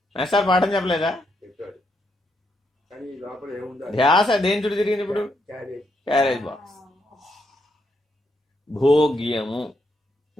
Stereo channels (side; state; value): both; normal; correlation 0.78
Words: మాస్టర్ పాఠం చెప్పలేదా? ధ్యాస దేని చుట్టూ తిరిగింది ఇప్పుడు? Carriage box. భోగ్యము,